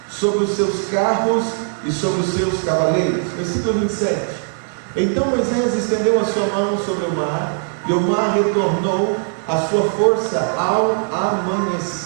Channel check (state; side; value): silent; left; digital silence